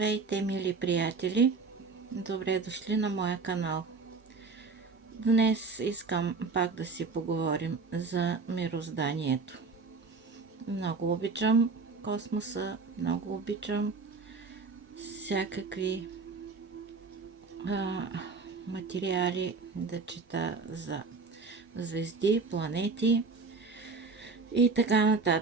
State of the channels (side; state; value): left; quieter; 4.4 dB